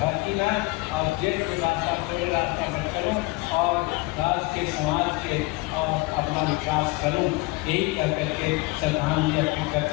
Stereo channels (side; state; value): right; quieter; 22.4 dB